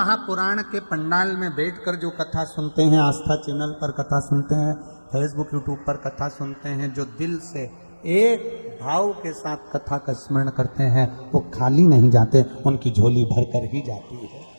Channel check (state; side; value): inverted; both; correlation -1.00